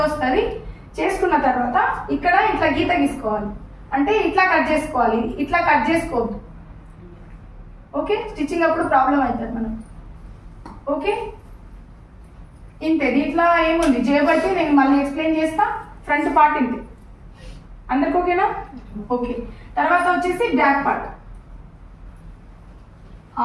వస్తుంది. చేసుకున్న తర్వాత ఇక్కడ ఇట్లా గీత గీసుకోవాలి. అంటే ఇట్లా కట్ చేసుకోవాలి, ఇట్లా కట్ చేసుకోవద్దు. ఓకే. స్టిచ్చింగ్ అప్పుడు ప్రాబ్లం అవుతుంది మనం. ఓకే. ఇంతే. దీంట్లో ఏముంది చేయబట్టి నేను మళ్ళీ ఎక్స్ప్లెయిన్ చేస్తా. ఫ్రంట్ పార్ట్ ఇంతే. అందరికి ఓకేనా? ఓకే. తర్వాత వచ్చేసి బ్యాక్ పార్ట్.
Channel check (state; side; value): identical; both; correlation 1.00